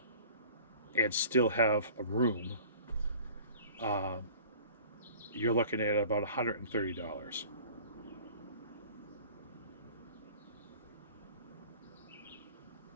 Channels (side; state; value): both; inverted; correlation -0.46